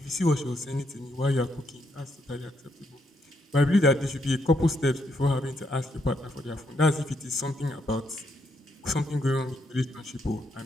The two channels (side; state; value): both; normal; correlation 0.77